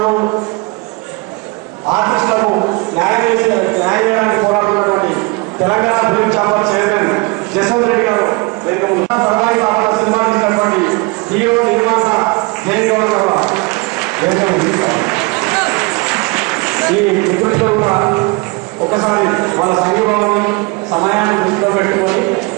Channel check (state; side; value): quieter; left; 26.8 dB